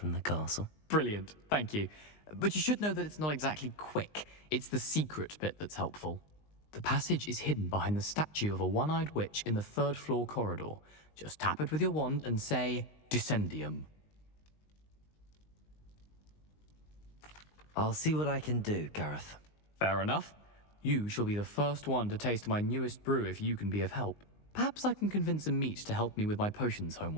the castle. Brilliant, thank you. But you should know that it's not exactly quick. It's the secret bit that's helpful. The passage is hidden behind the statue of a one-eyed witch in the third-floor corridor. Just tap it with your wand and say, Descendium. I'll see what I can do, Gareth. Fair enough. You shall be the first one to taste my newest brew if you can be of help. Perhaps I can convince a meat to help me with my potions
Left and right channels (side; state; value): right; late; 19 ms